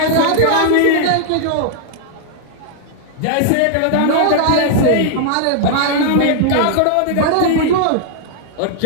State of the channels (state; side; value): different; both; correlation 0.00